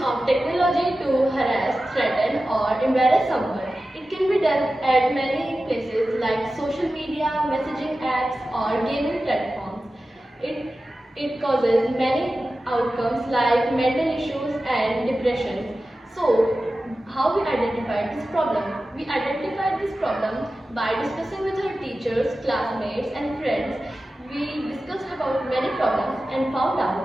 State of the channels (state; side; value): normal; both; correlation 0.94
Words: technology to harass, threaten or embarrass someone. It can be done at many places like social media, messaging apps or gaming platforms. It causes many outcomes like mental issues and depression. So, how we identified this problem? We identified this problem by discussing with our teachers, classmates and friends. We discussed about many problems and found